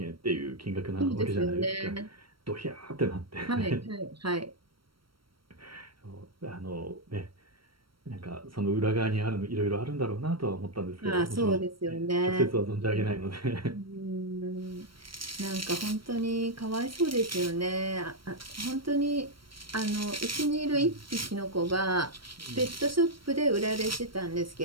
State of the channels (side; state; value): left; late; 0.74 ms